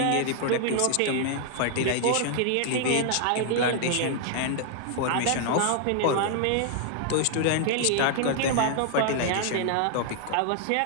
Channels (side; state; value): both; different; correlation 0.00